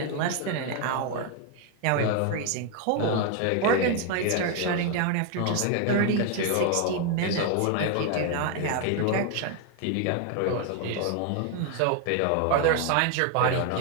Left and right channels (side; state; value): both; different; correlation 0.01